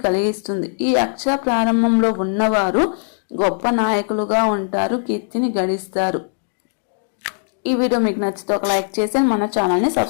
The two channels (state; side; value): silent; right; digital silence